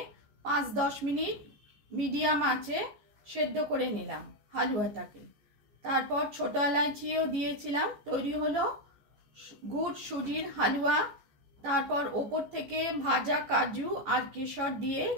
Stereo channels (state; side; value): late; left; 14 ms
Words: 5-10 মিনিট মিডিয়াম আঁচে সেদ্ধ করে নিলাম হালুয়াটাকে। তারপর ছোটো এলাচিও দিয়েছিলাম। তৈরি হলো গুড় সুজির হালুয়া। তারপর ওপর থেকে ভাজা কাজু আর কেশর দিয়ে